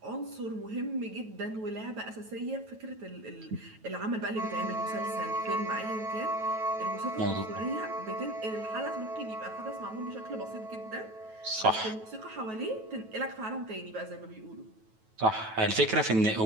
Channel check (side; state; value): left; late; 9.2 ms